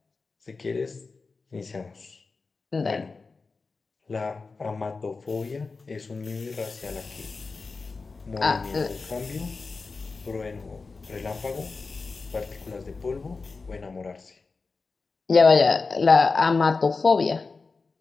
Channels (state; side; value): quieter; right; 4.2 dB